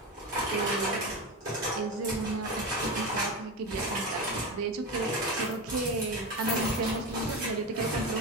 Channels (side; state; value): both; normal; correlation 0.21